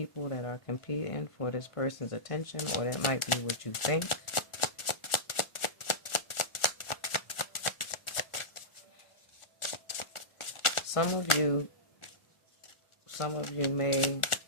that are competing for this person's attention, or that might be what you think. Some of you may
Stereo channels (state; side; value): late; right; 1.4 ms